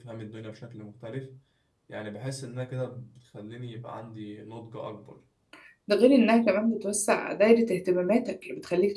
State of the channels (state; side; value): identical; both; correlation 1.00